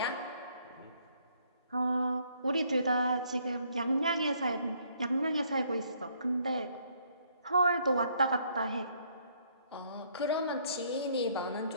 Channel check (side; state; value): both; inverted; correlation -0.67